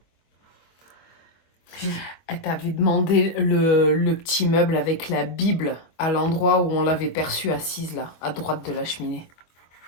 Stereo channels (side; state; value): right; late; 24 ms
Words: Elle t'avait demandé le petit meuble avec la Bible à l'endroit où on l'avait perçue assise, là, à droite de la cheminée.